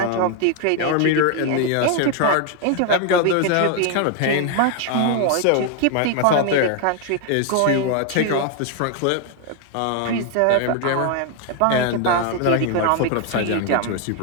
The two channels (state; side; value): different; both; correlation 0.01